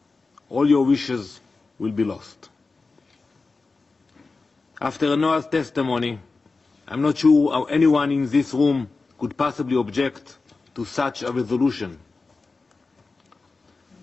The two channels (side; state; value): right; quieter; 3.9 dB